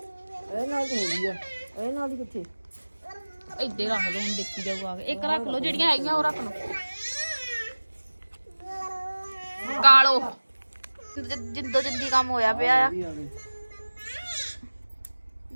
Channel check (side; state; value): both; inverted; correlation -1.00